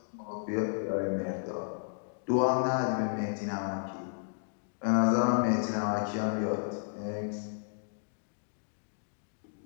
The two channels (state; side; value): silent; right; digital silence